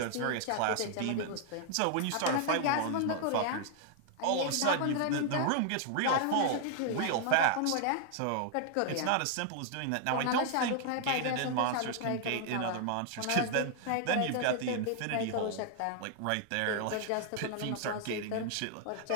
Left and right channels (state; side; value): different; both; correlation 0.00